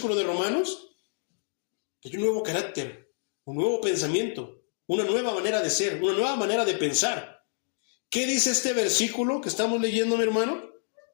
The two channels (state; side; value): silent; right; 59 dB below the other